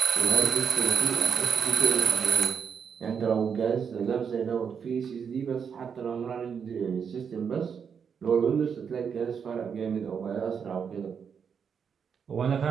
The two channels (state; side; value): quieter; left; 6.9 dB